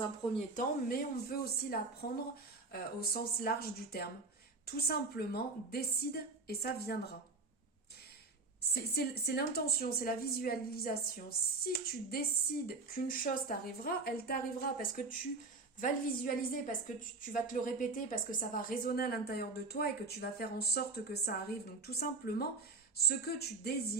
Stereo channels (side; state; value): left; quieter; 3.8 dB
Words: un premier temps, mais on peut aussi la prendre au sens large du terme. Tout simplement, décide et ça viendra. C'est l'intention, c'est la visualisation. Si tu décides qu'une chose t'arrivera, elle t'arrivera parce que tu vas le visualiser, parce que tu vas te le répéter, parce que ça va résonner à l'intérieur de toi et que tu vas faire en sorte que ça arrive. Donc tout simplement, ce que tu